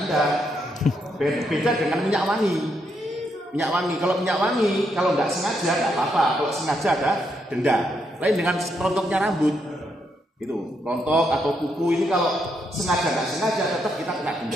Beda dengan minyak wangi. Minyak wangi, kalau minyak wangi kalau nggak sengaja nggak apa-apa. Kalau sengaja ada denda. Lain dengan rontoknya rambut. Itu rontok atau kuku ini kalau sengaja nggak sengaja tetap kita kena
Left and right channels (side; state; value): both; normal; correlation 0.78